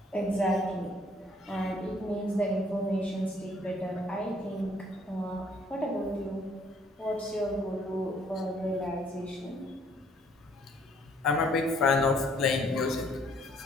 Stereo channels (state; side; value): normal; both; correlation 0.62